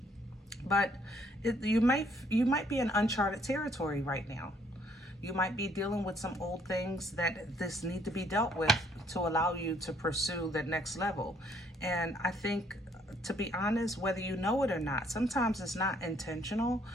But you might be in uncharted territory right now. You might be dealing with some old things that this need to be dealt with to allow you to pursue the next level. And I think, to be honest, whether you know it or not, sometimes it's not intentional,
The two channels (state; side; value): normal; both; correlation 0.66